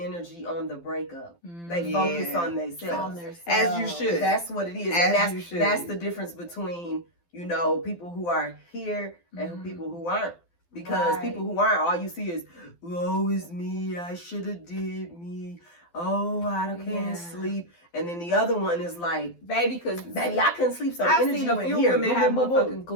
on the breakup. They focus on themselves. As you should. That's what it is. And that's the difference between, you know, people who are here and people who aren't. Because people who aren't, all you see is, woe is me, I should have did me. Oh, I can't sleep. And then the other one is like, baby, I couldn't sleep. So I've seen a few women have motherfucking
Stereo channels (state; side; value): late; right; 12 ms